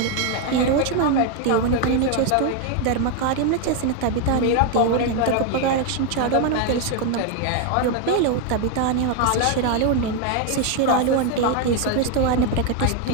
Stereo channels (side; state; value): both; different; correlation 0.01